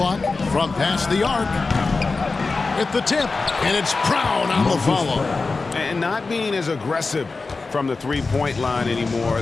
From past the arc. At the tip. And it's Brown on the follow. And not being as aggressive from the three-point line anymore.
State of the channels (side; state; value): right; quieter; 3.9 dB